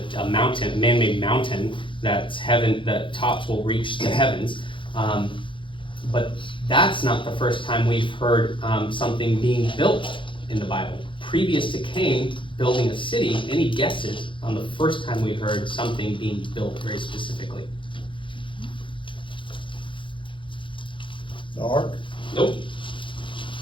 mountain, man-made mountain that's heaven. The tops will reach the heavens. But that's not the first time we've heard something being built in the Bible. Previous to Cain building a city, any guesses on the first time we heard something being built very specifically? The ark. Nope.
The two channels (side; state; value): right; late; 0.24 ms